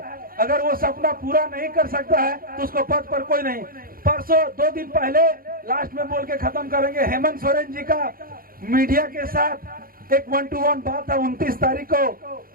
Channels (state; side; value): late; left; 0.42 ms